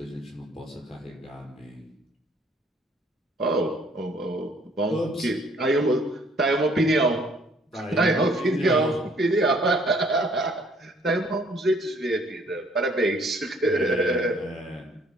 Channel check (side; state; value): both; normal; correlation 0.61